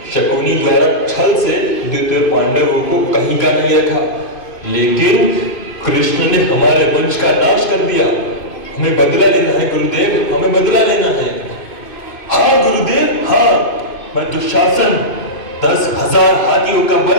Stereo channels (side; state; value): right; late; 2.5 ms